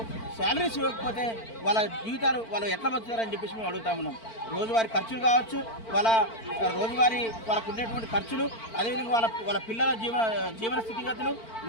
శాలరీస్ ఇవ్వకపోతే వాళ్ళ జీవితాలు వాళ్ళు ఎట్లా బతుకుతారని చెప్పేసి మేము అడుగుతా ఉన్నాం. రోజువారీ ఖర్చులు కావచ్చు, రోజువారీ వాళ్ళకు ఉండేటువంటి ఖర్చులు, అదేవిధంగా వాళ్ళ పిల్లల జీవన స్థితిగతులు,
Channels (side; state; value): right; late; 4.5 ms